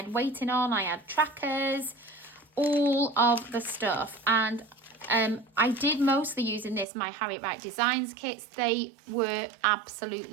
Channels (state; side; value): drops out; left; at 6.9 s